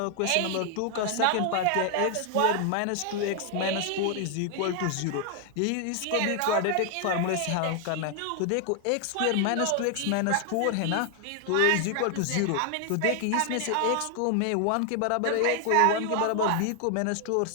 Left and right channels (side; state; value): both; different; correlation 0.00